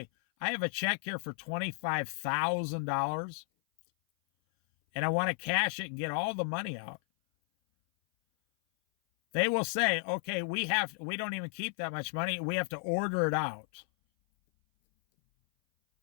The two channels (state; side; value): silent; right; 56 dB below the other